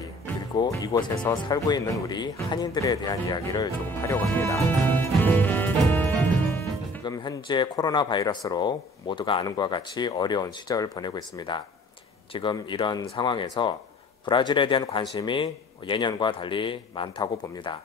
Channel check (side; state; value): both; normal; correlation 0.50